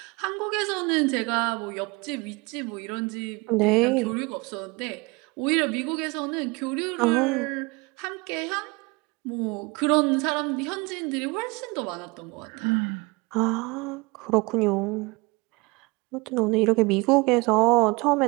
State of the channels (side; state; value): left; quieter; 26.0 dB